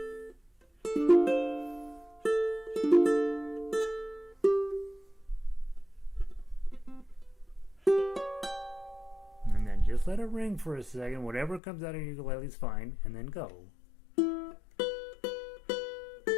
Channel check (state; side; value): drops out; right; at 11.6 s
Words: And then just let it ring for a second. Whatever comes out of your ukulele is fine, and then go.